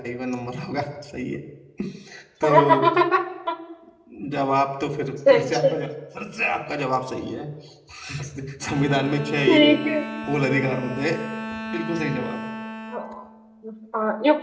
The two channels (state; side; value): identical; both; correlation 1.00